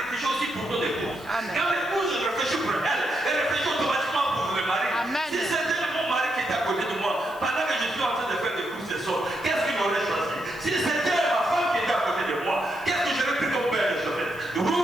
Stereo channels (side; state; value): right; noise; hiss, 24 dB below the sound